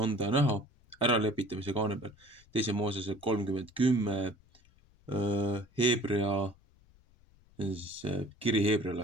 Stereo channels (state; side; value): noise; left; rumble, 29 dB below the sound